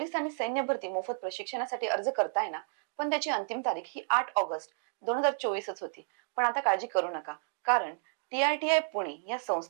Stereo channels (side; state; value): left; silent; digital silence